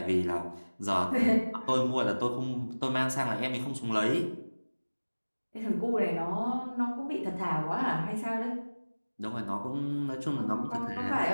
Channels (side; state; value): both; inverted; correlation -1.00